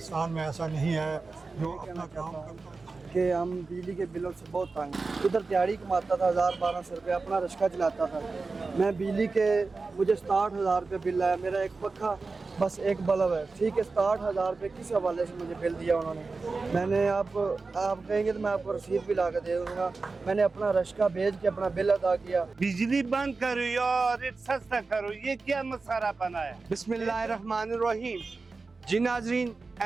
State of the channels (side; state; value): left; quieter; 4.0 dB